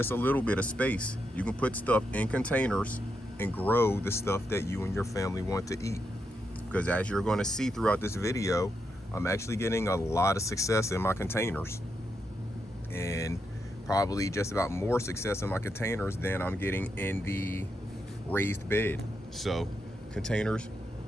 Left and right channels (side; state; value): both; normal; correlation 0.83